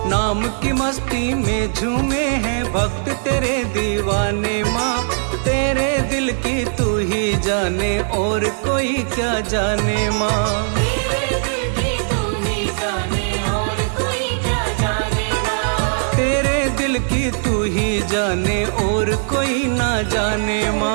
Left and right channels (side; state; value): left; silent; digital silence